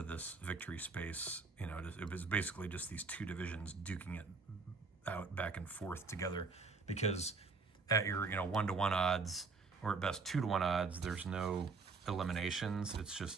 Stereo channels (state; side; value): quieter; left; 4.4 dB